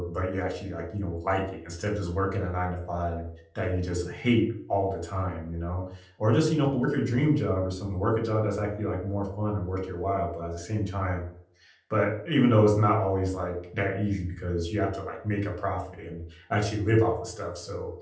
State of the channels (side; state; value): both; identical; correlation 1.00